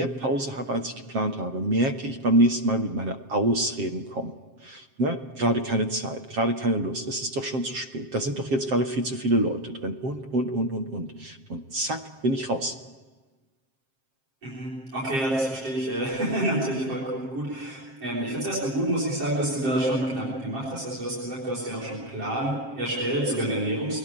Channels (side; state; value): left; late; 7.5 ms